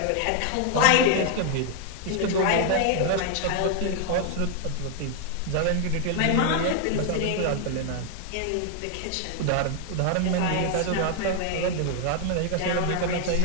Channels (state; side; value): different; both; correlation 0.00